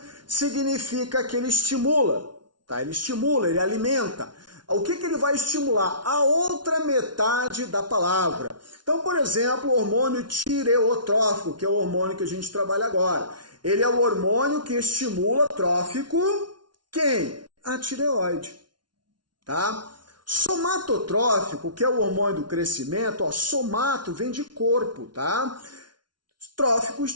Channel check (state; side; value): late; left; 0.70 ms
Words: significa que ele estimula, tá? Ele estimula, ele alimenta. O que ele vai estimular? A outra metade da palavra. Então, por exemplo, o hormônio tireotrófico, que é o hormônio que a gente trabalha agora. Ele é o hormônio que estimula trófico quem? A tireoide. Tá? Somatotrófico, que é o hormônio do crescimento, ó, somato vem de corpo, tá? Trófico